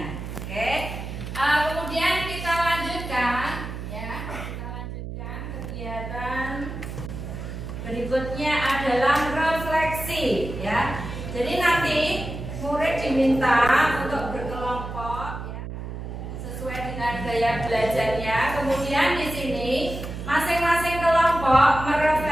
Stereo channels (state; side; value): noise; right; hum, 8 dB below the sound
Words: Oke. Kemudian kita lanjutkan ya. Kita lanjutkan kegiatan berikutnya adalah refleksi ya. Jadi nanti murid diminta untuk berkelompok ya, sesuai dengan gaya belajarnya. Kemudian di sini masing-masing kelompok